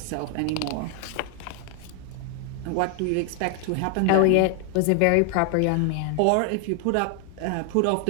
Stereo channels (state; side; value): different; both; correlation 0.00